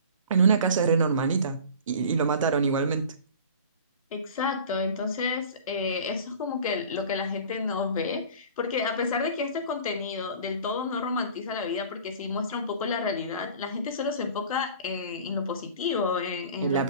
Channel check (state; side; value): inverted; both; correlation -0.42